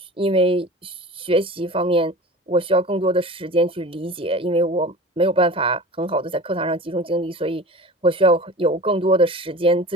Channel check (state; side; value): normal; both; correlation 0.36